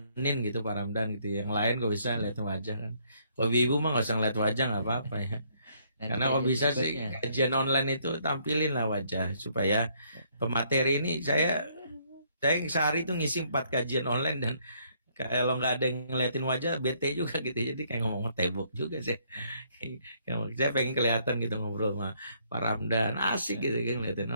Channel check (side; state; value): both; inverted; correlation -0.68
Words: gitu Pak Ramdan gitu. Yang lain kok bisa lihat wajah kan. Kalau ibu mah nggak usah ngeliat wajah, nggak apa-apa ya. Karena kalau bisa sih kajian online itu tampilin lah wajah supaya pemateri ini saya sehari itu ngisi 4 kajian online dan Kalau nggak ada yang ngeliatin wajah bete juga gitu, jadi kayak ngomong tembok juga sih. Saya pengen kelihatan gitu ngobrol sama Pak Ramdan, asik gitu kan ngeliatin,